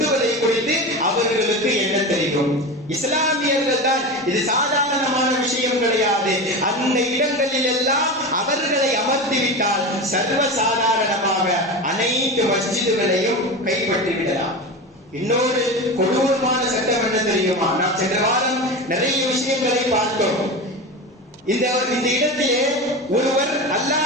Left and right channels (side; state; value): both; normal; correlation 0.25